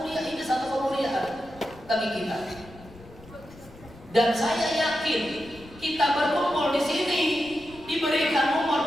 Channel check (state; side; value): noise; left; rumble, 21 dB below the sound